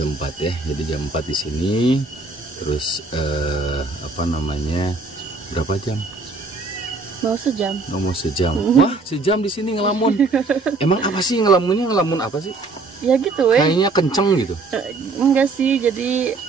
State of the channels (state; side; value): quieter; left; 3.7 dB